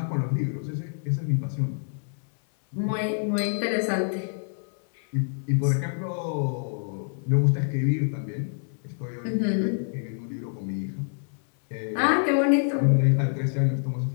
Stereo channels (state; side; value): silent; right; 60 dB below the other